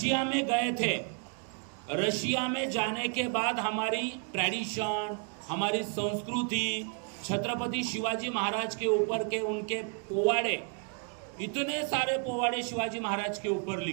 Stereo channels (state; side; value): quieter; left; 39.9 dB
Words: में गए थे, रशिया में जाने के बाद हमारी ट्रेडिशन, हमारी संस्कृति, छत्रपति शिवाजी महाराज के ऊपर के उनके पोवाड़े, इतने सारे पोवाड़े शिवाजी महाराज के ऊपर